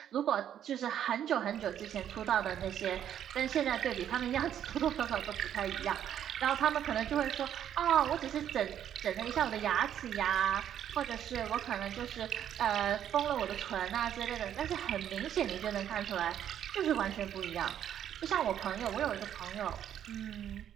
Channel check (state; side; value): quieter; left; 10.0 dB